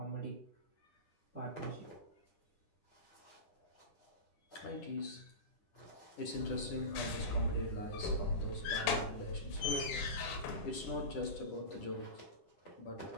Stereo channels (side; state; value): right; late; 10 ms